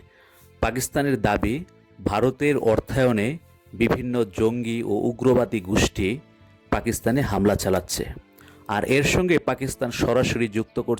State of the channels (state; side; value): identical; both; correlation 1.00